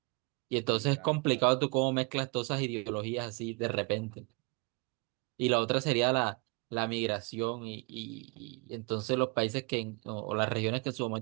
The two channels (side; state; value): left; quieter; 31.3 dB